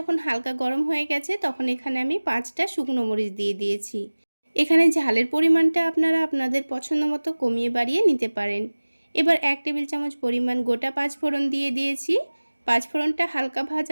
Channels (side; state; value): both; inverted; correlation -1.00